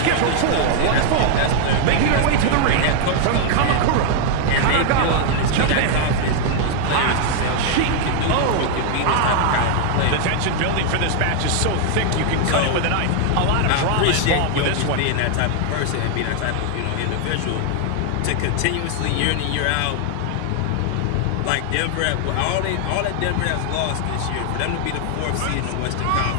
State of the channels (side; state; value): both; different; correlation 0.00